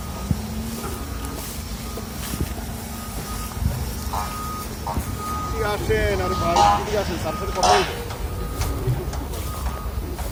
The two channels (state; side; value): identical; both; correlation 1.00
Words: আসেন আর ভাই ঠিক আসেন, স্যার সাথে কথা বলবো।